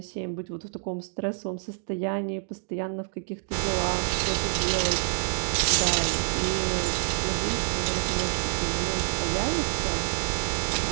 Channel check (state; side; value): silent; left; digital silence